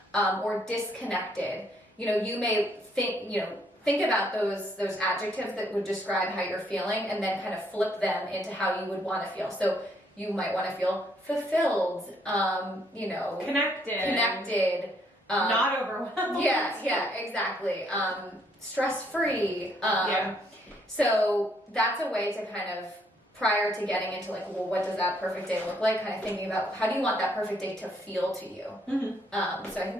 or disconnected, you know, you may think about those adjectives that would describe how you're feeling, and then kind of flip them into how you would want to feel. So you might want to feel fulfilled, you know, connected, not overwhelmed. Yeah, exactly. Stress-free. So that's a way to kind of, prior to getting into like, well, what does that perfect day look like? Kind of thinking about how do you want that perfect day to feel to you. So I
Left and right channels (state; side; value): normal; both; correlation 0.69